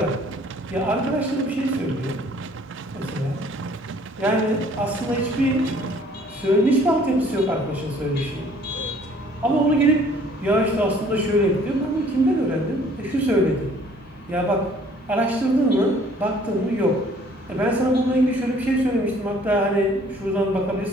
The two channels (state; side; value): normal; both; correlation 0.57